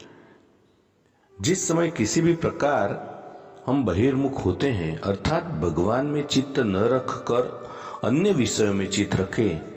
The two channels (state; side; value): identical; both; correlation 1.00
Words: जिस समय किसी भी प्रकार हम बहिर्मुख होते हैं, अर्थात भगवान में चित्त न रखकर अन्य विषयों में चित्त रखें,